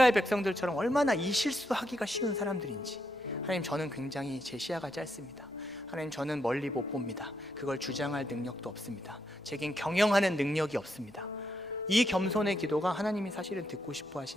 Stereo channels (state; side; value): normal; both; correlation 0.80